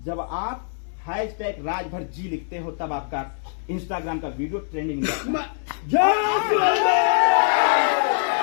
जब आप #राजभर जी लिखते हो, तब आपका इंस्टाग्राम का वीडियो ट्रेंडिंग में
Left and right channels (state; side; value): silent; right; digital silence